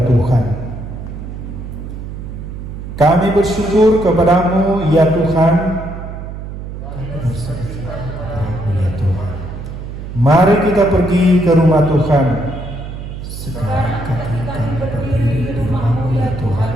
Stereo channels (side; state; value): right; noise; hum, 9 dB below the sound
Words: Tuhan. Kami bersyukur kepadamu ya Tuhan. Mari kita pergi ke rumah Tuhan. Sekarang kami berdiri di rumah-Mu ya Tuhan,